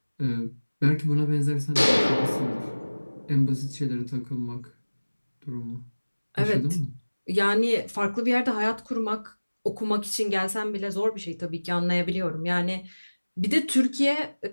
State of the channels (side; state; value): both; inverted; correlation -1.00